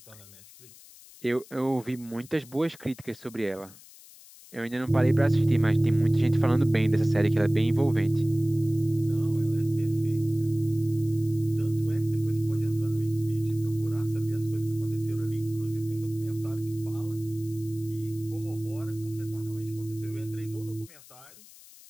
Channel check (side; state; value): left; noise; hiss, 21 dB below the sound